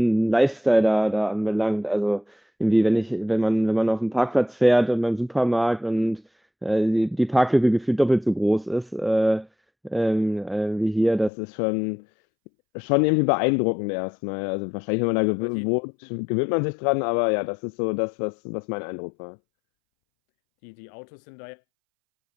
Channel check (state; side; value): drops out; right; at 11.3 s